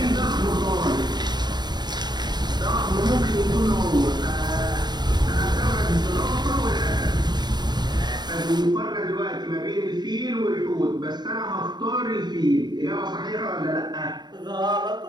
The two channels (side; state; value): left; late; 0.21 ms